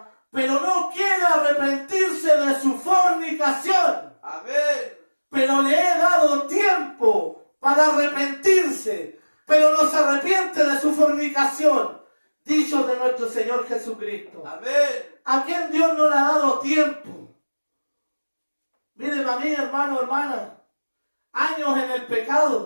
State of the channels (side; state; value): both; inverted; correlation -1.00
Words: pero no quiere arrepentirse de su fornicación. Amén. Pero le he dado tiempo para arrepentirse, pero no se arrepiente de su fornicación. Dicho de nuestro Señor Jesucristo. Amén. ¿A quién Dios no le ha dado tiempo? Miren a mí, hermano, hermana, años en el